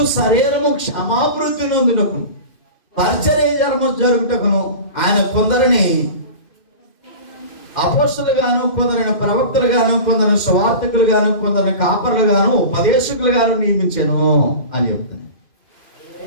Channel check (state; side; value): late; right; 2.5 ms